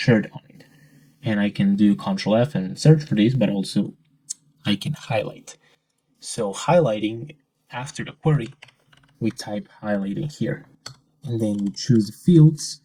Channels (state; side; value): identical; both; correlation 1.00